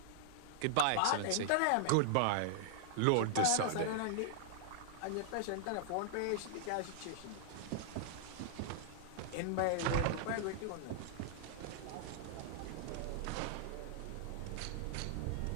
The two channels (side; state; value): both; different; correlation -0.01